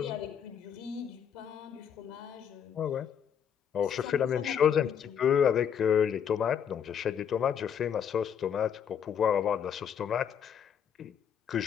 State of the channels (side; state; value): right; quieter; 8.2 dB